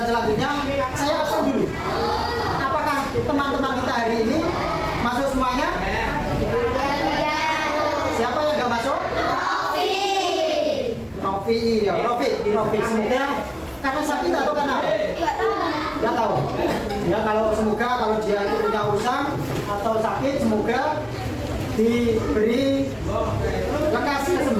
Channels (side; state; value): both; identical; correlation 1.00